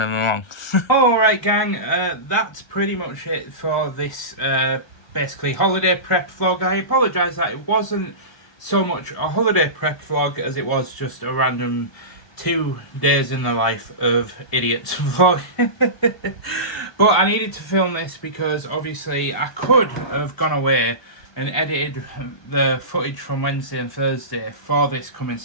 along. Alright gang, that's pretty much it for this basically holiday prep vlog. I apologise that it wasn't so much a holiday prep vlog as it was just a random 2 days in the life of idiots vlog. But I needed to film this because obviously I could have gone away and edited the footage from Wednesday and Thursday for this coming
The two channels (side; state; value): right; late; 1.2 ms